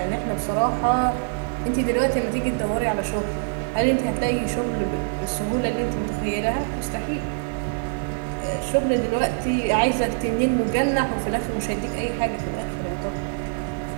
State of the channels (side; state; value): left; silent; digital silence